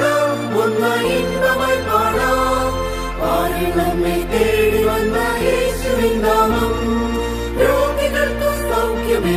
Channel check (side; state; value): both; identical; correlation 1.00